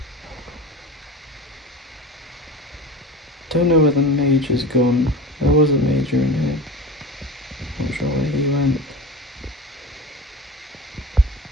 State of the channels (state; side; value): normal; both; correlation 0.31